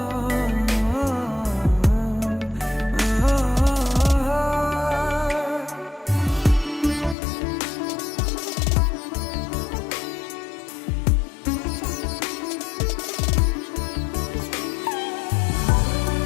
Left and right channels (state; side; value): drops out; right; at 7.2 s